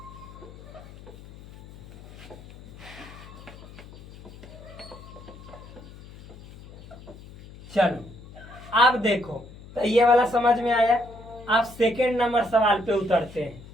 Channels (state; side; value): noise; left; hum, 18 dB below the sound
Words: चलो आप देखो, तो ये वाला समझ में आया। आप सेकेंड नंबर सवाल पे उतरते हैं।